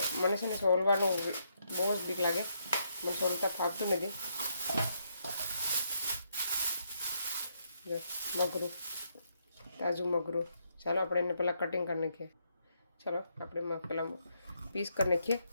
મને છે ને સોલવાનું બહુ જ બીક લાગે, મને સોલતા ફાવતું નથી. મગરું, તાજું મગરું. ચાલો આપણે એને પહેલાં કટિંગ કરી નાખીએ. ચાલો આપણે પહેલાં પીસ કરી નાખીએ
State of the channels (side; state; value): both; inverted; correlation -0.77